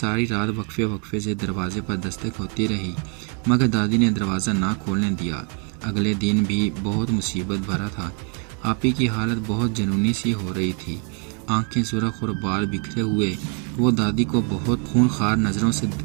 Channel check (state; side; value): quieter; left; 38.7 dB